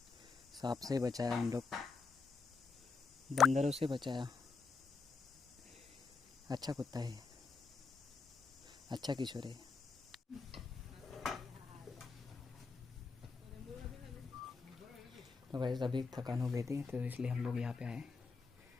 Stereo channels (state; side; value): quieter; right; 4.6 dB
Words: सांप से बचाया हम लोग, बंदरों से बचाया। अच्छा कुत्ता है, अच्छा किशोर है। तो वैसे अभी थकान हो गई थी तो इसलिए हम लोग यहाँ पे आए